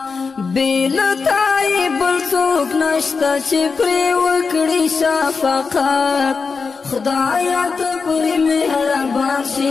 بیلتائی بلسوک نشتا چی پری وکڑی شفقات خدایا تا پری مہربان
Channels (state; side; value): quieter; right; 4.9 dB